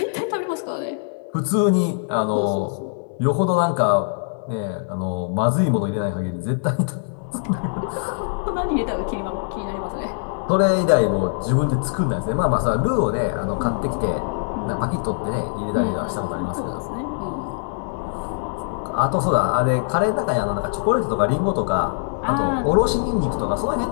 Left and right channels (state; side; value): silent; right; digital silence